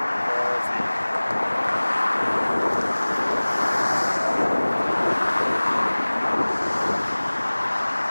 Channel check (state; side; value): inverted; both; correlation -1.00